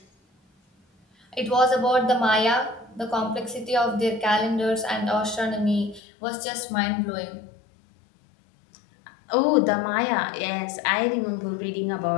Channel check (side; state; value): right; drops out; at 6.0 s